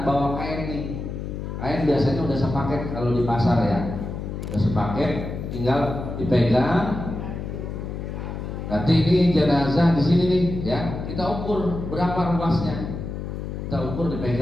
bawa kain nih. Kain biasanya udah sepaket kalau di pasar ya, udah sepaket, tinggal dipegang. Nanti ini jenazah di sini nih, ya, kita ukur berapa ruasnya, kita ukur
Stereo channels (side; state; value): left; noise; hum, 6 dB below the sound